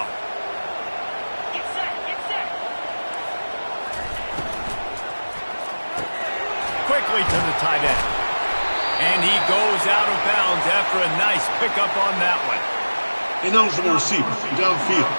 Quickly to the tight end. And he goes out of bounds after a nice pickup on that one. Ineligible receiver, downfield,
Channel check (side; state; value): both; inverted; correlation -1.00